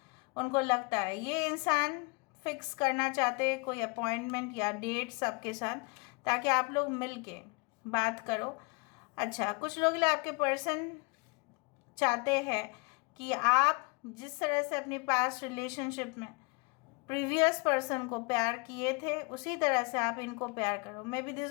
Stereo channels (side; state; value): right; quieter; 29.3 dB